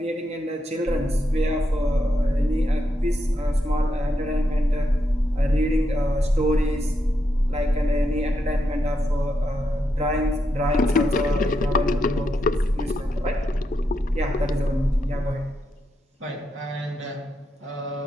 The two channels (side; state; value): both; normal; correlation 0.83